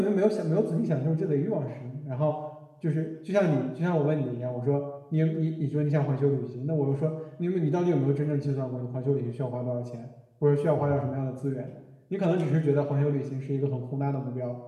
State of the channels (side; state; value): both; identical; correlation 1.00